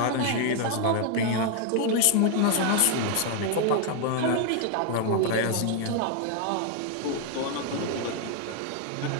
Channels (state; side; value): different; both; correlation 0.00